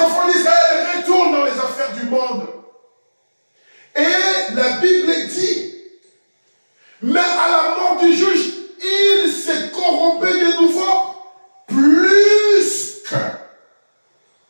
d'Israël retournent dans les affaires du monde. Et la Bible dit, mais à la mort du juge, il s'est corrompu de nouveau plus que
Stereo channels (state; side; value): inverted; both; correlation -1.00